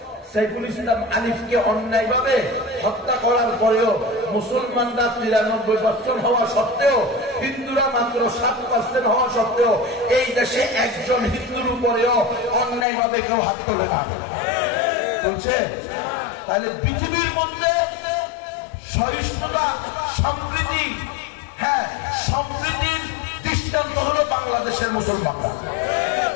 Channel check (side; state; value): right; drops out; at 12.9 s